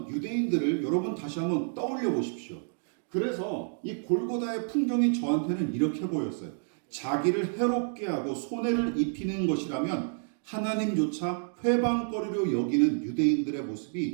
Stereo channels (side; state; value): left; silent; digital silence